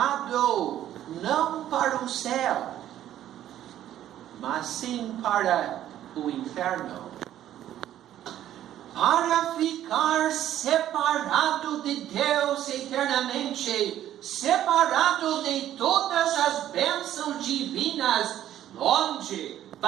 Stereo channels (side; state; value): left; quieter; 12.0 dB